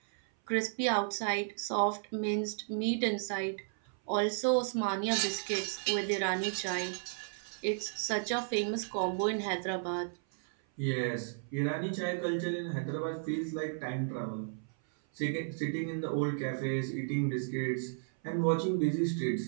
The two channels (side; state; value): left; silent; 55 dB below the other